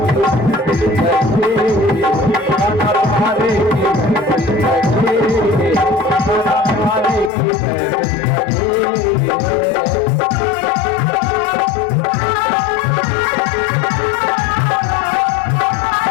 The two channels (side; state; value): right; drops out; at 7.3 s